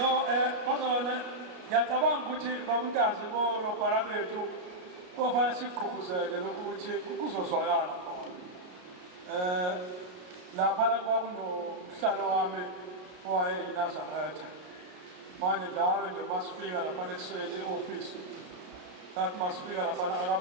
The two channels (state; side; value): late; left; 33 ms